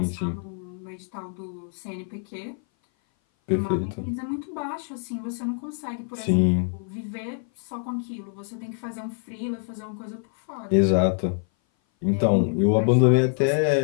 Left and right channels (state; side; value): silent; right; 57 dB below the other